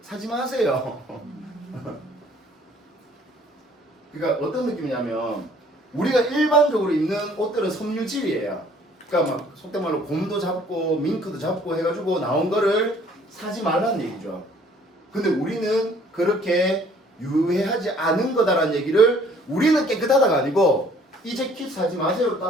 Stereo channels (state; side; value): normal; both; correlation 0.58